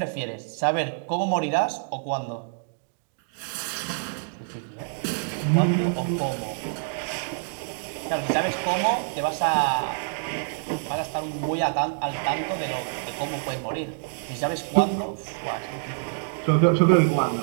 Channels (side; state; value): left; silent; digital silence